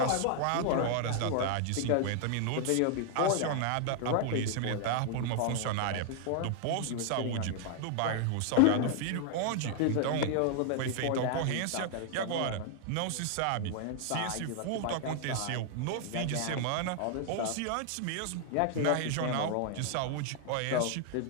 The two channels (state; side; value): different; both; correlation 0.00